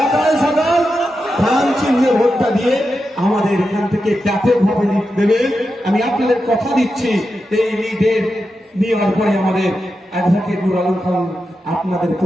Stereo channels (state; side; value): normal; both; correlation 0.89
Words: সকাল ধান চিহ্নে ভোটটা দিয়ে আমাদের এখান থেকে ব্যাপকভাবে লিড দেবেন। আমি আপনাদের কথা দিচ্ছি, এই লিডের নেওয়ার পরে আমাদের অ্যাডভোকেট নুর আলম খান আপনাদের